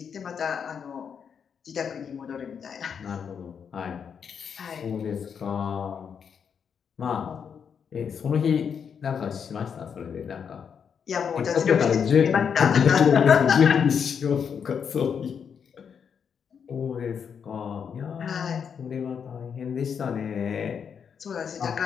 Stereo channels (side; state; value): right; quieter; 7.1 dB